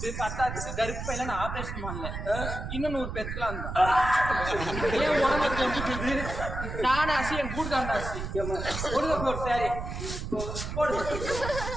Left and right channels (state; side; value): noise; right; rumble, 6 dB below the sound